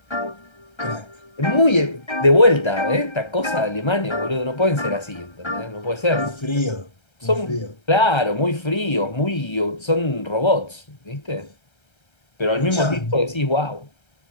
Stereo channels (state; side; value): late; right; 1.3 ms